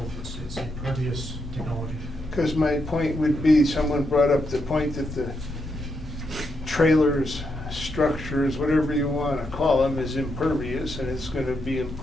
it's a pervious technology. Because my point would be, someone brought up the point that the trailers, structures, whatever you want to call them, is impervious, and it's going to be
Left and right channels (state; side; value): normal; both; correlation 0.81